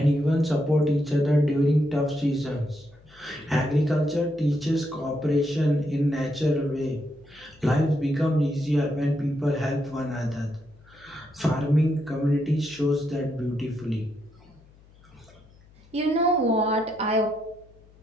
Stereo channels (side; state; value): left; noise; hum, 27 dB below the sound